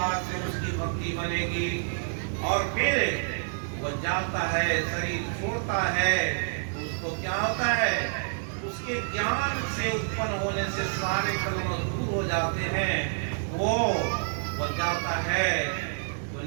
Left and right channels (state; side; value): silent; left; 59 dB below the other